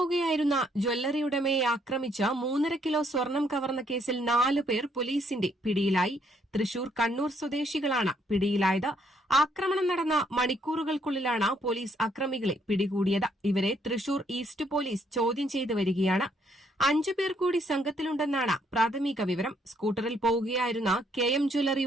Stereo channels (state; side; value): normal; both; correlation 0.69